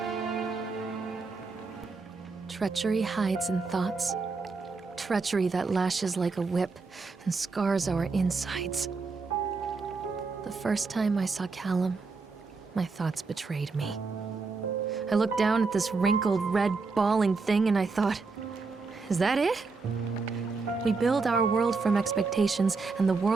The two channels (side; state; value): left; quieter; 4.3 dB